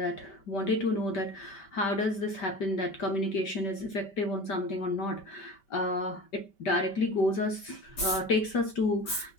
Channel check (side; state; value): right; late; 5.1 ms